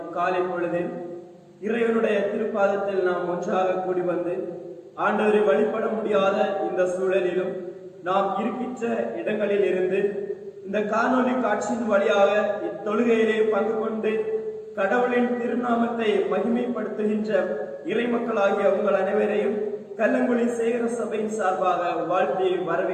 காலை பொழுதில் இறைவனுடைய திருப்பாதத்தில் நாம் ஒன்றாக கூடி வந்து ஆண்டவரை வழிபட முடியாத இந்த சூழலிலும் நாம் இருக்கின்ற இடங்களில் இருந்து இந்த காணொலி காட்சியின் வழியாக இத்தொழுகையிலே பங்கு கொண்டு கடவுளின் திருநாமத்தை மகிமைப்படுத்துகின்ற இறை மக்களாகிய உங்கள் அனைவரையும் கல்லங்குழி சேகர சபையின் சார்பாக வாழ்த்தி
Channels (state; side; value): identical; both; correlation 1.00